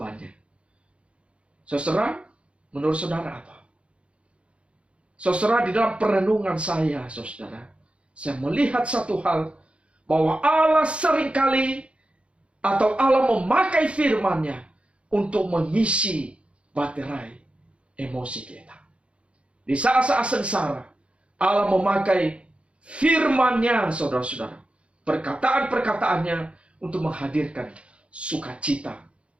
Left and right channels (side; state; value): left; late; 0.060 ms